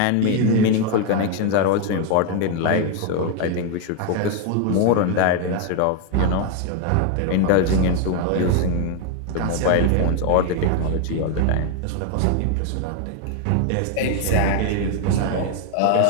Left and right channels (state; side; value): different; both; correlation 0.00